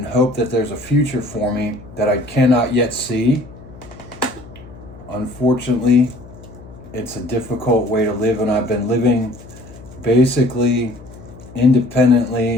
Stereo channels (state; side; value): noise; left; hum, 19 dB below the sound